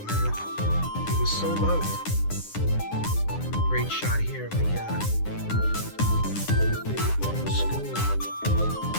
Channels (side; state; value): right; late; 9.8 ms